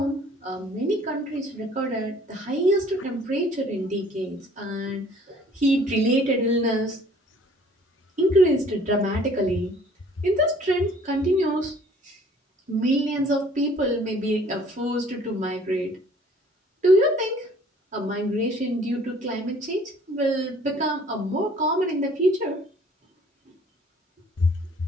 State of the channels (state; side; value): normal; both; correlation 0.55